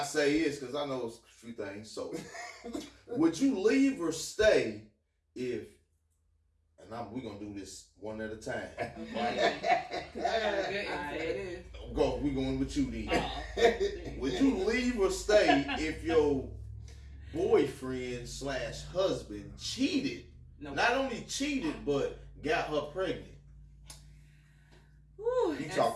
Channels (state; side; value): identical; both; correlation 1.00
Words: say this, because I know a few things. So, would you leave or stay if, and we're going to do this one at a time. We're going with you then. Would you leave or stay if your boyfriend / husband cheated? No. Not only cheated, but got her pregnant. Whew, you